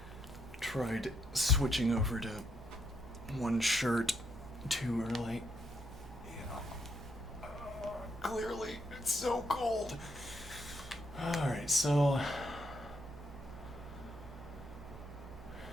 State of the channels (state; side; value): normal; both; correlation 0.76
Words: Tried switching over to one shirt too early. Clearly, it's so cold. Alright, so.